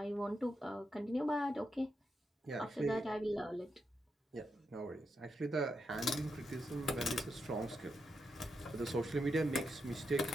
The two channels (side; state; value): both; normal; correlation 0.85